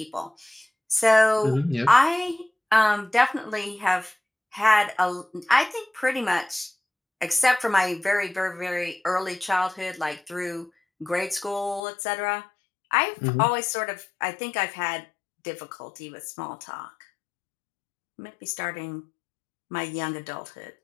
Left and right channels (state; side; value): drops out; right; at 11.8 s